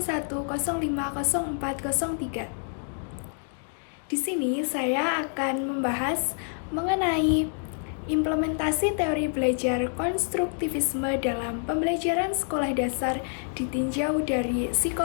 Di sini saya akan membahas mengenai implementasi teori belajar konstruktivisme dalam pembelajaran sekolah dasar ditinjau dari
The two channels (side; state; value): right; silent; 60 dB below the other